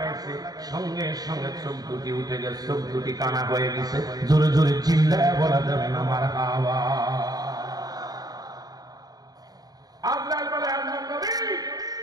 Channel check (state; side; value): late; left; 0.18 ms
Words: সঙ্গে সঙ্গে চোখ দুটি উঠে গেছে, চোখ দুটি কানা হয়ে গেছে। জোরে জোরে চিল্লায় বলা যাবে না মারহাবা। আজরাইল বলে, আল্লাহর নবী